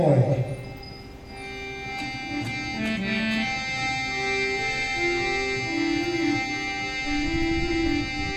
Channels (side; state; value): both; identical; correlation 1.00